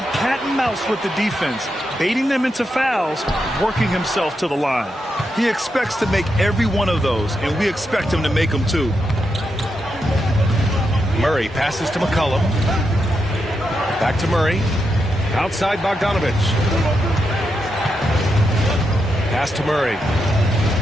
cat and mouse with the defense, baiting them into fouls, working himself to the line. He expects to make every one of those, and we expect him to make them too. Murray passes to McCollum. Back to Murray. Outside Bogdanovich. Pass to Murray.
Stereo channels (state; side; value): normal; both; correlation 0.84